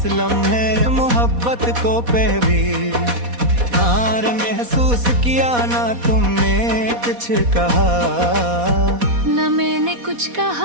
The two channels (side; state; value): left; late; 4.1 ms